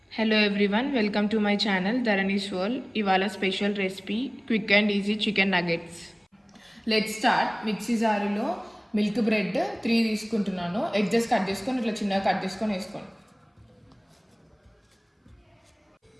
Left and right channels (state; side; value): identical; both; correlation 1.00